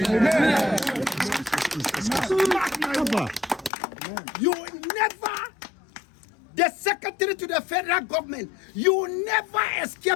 You will never, the secretary to the federal government, you will never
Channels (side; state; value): right; drops out; at 3.7 s